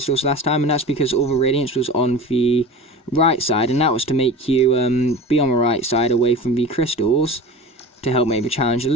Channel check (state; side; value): normal; both; correlation 0.34